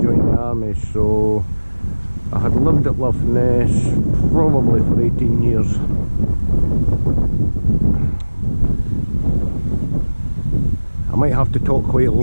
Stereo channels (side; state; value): both; inverted; correlation -1.00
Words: join the army, so I had lived at Loughness probably for 18 years. I might have to talk quite